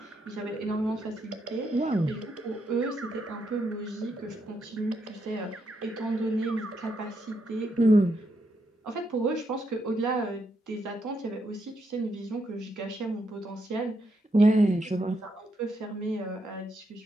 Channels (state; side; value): normal; both; correlation 0.79